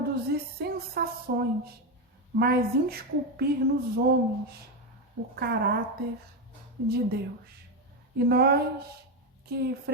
sensações, mas esculpir nos homens o caráter de Deus. E nós que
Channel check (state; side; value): normal; both; correlation 0.10